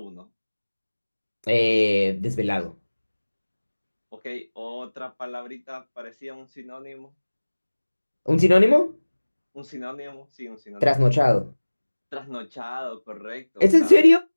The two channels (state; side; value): inverted; both; correlation -1.00